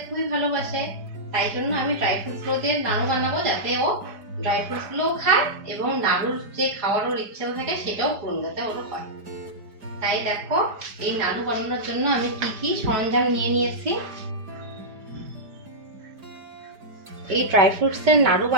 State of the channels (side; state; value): left; late; 5.0 ms